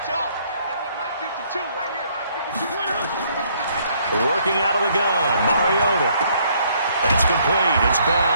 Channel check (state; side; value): inverted; both; correlation -0.66